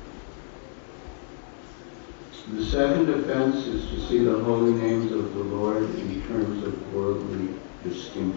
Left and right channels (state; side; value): silent; right; digital silence